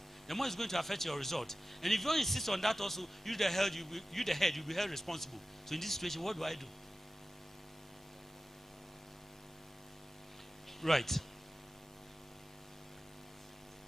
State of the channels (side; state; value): both; normal; correlation 0.95